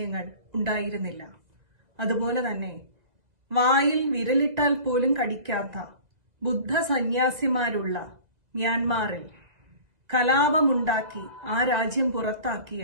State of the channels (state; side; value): late; left; 2.0 ms